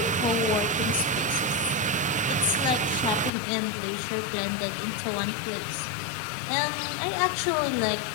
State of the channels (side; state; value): right; drops out; at 3.3 s